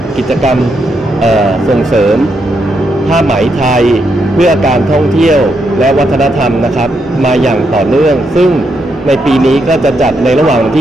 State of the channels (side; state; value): both; normal; correlation 0.80